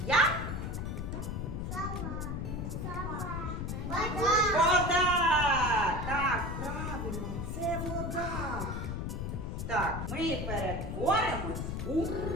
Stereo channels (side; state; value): left; noise; rumble, 3 dB below the sound